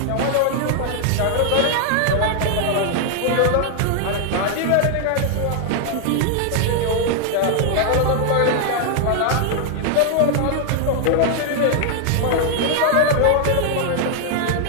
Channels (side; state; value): both; different; correlation 0.00